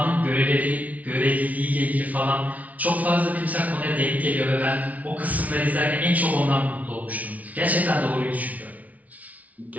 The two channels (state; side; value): late; left; 0.071 ms